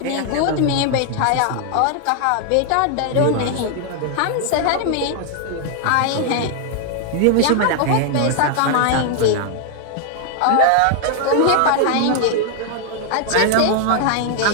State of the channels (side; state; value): both; different; correlation 0.00